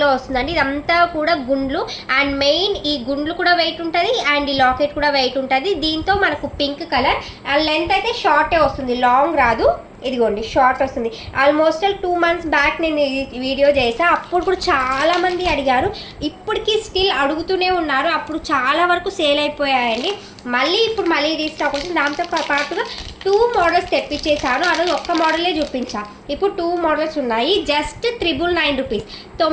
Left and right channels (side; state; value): both; identical; correlation 1.00